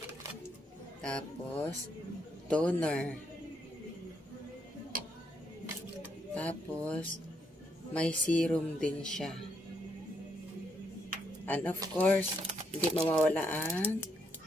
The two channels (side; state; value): both; normal; correlation 0.76